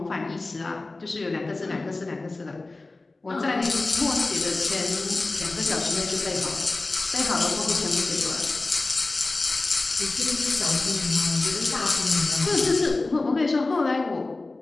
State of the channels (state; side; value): quieter; right; 3.3 dB